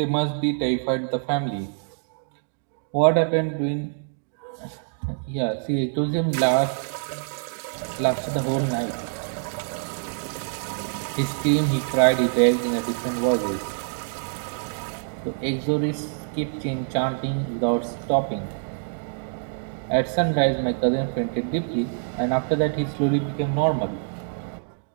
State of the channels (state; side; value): silent; left; digital silence